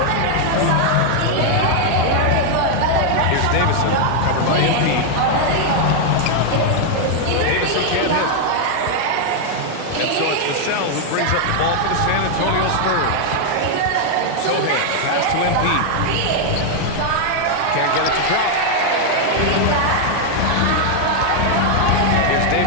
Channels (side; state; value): both; different; correlation 0.00